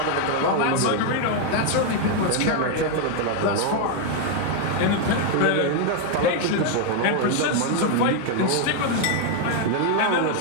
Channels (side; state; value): both; different; correlation 0.01